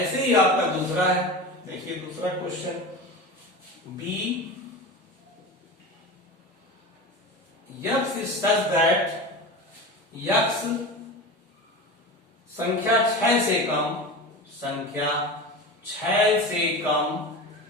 ही आपका दूसरा है, देखिए दूसरा question, B x is such that, x संख्या 6 से कम, संख्या 6 से कम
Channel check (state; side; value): normal; both; correlation 0.28